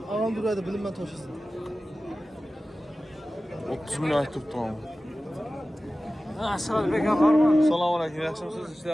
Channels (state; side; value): normal; both; correlation 0.96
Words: Ağam duraydı bilinmən taşısın. 30 milyon ayt tuttum ama. Asıl bekar var mı? Salam aleyküm, yaxşımısınız? İşte